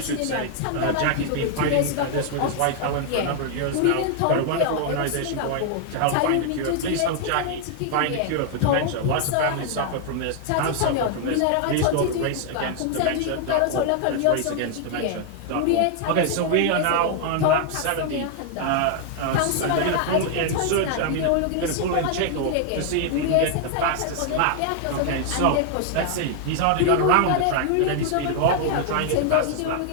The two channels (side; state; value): both; different; correlation 0.00